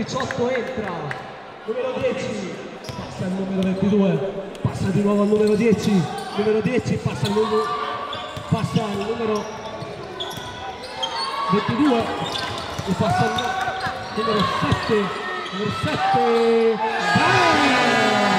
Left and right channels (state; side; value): identical; both; correlation 1.00